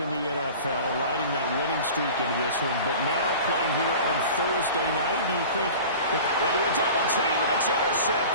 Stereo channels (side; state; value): both; inverted; correlation -0.39